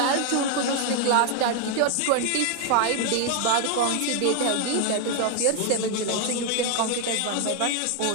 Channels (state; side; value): different; both; correlation 0.00